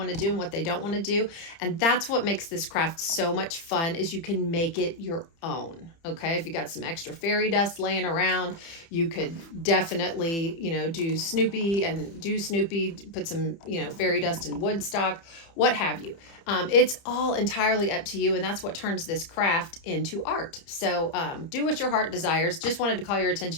to do and what they don't want to do. And that's what makes this craft so much fun, is you can make it your own. Okay. If you got some extra fairy dust laying around, you could definitely, do Snoopy, put some, fairy dust in Woodstock, what have you. It's all entirely up to you. And that's what turns this craft into art. So do what your heart desires. Just wanted to call your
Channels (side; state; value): right; late; 30 ms